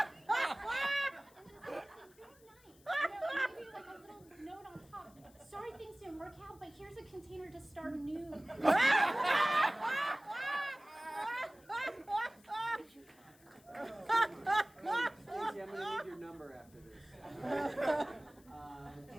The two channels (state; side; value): noise; left; hiss, 27 dB below the sound